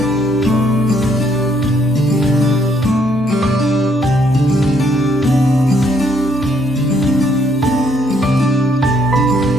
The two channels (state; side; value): normal; both; correlation 0.69